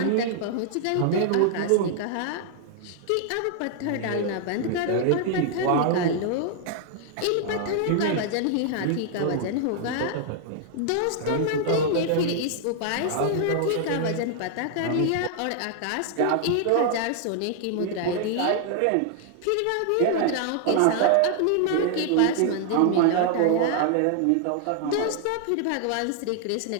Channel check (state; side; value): different; both; correlation 0.00